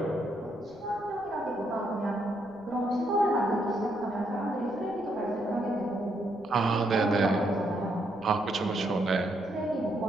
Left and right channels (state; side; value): noise; right; rumble, 26 dB below the sound